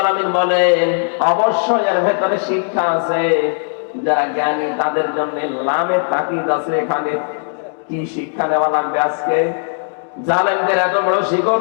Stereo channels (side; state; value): right; silent; 68 dB below the other